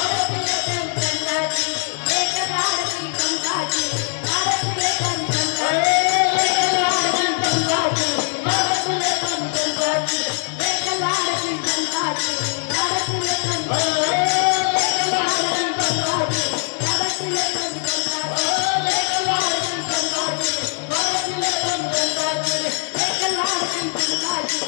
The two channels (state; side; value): silent; right; 65 dB below the other